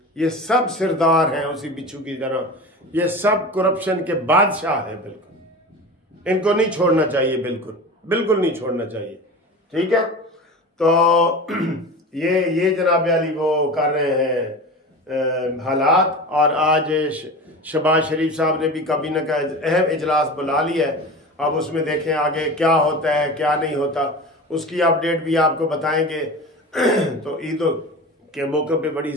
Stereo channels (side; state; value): both; normal; correlation 0.32